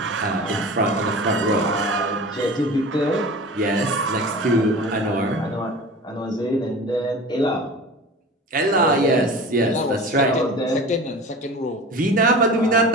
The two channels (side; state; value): both; normal; correlation 0.36